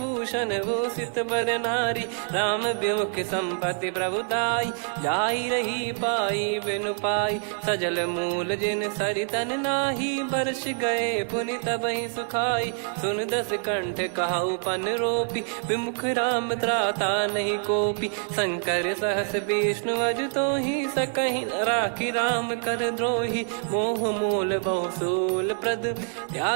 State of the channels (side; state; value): left; silent; 61 dB below the other